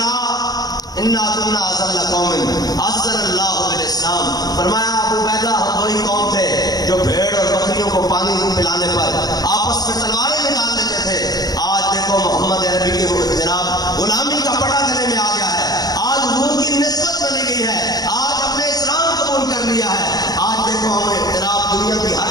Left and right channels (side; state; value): right; late; 0.19 ms